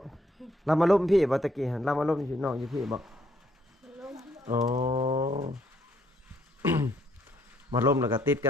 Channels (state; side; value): normal; both; correlation 0.70